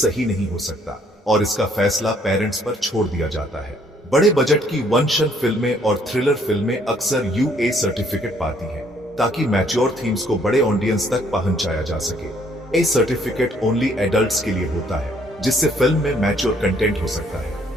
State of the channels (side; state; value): both; normal; correlation 0.65